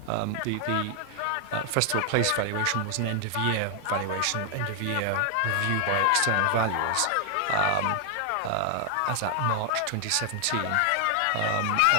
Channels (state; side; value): different; both; correlation 0.00